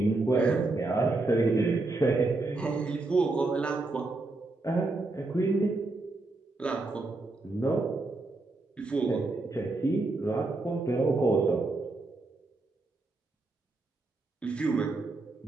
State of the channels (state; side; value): quieter; left; 3.2 dB